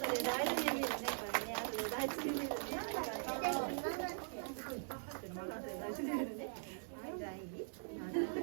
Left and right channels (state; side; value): silent; left; digital silence